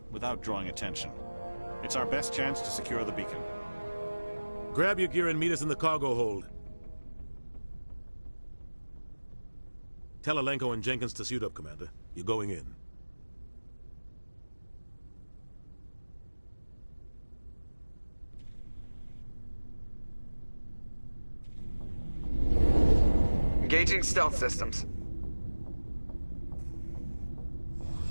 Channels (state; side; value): inverted; both; correlation -1.00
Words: without drawing attention. It's our best chance to secure the beacon. Grab your gear and meet us in the cargo hold. Tell Alenko and Jenkins to suit up, Commander. You're going in. Engaging stealth systems.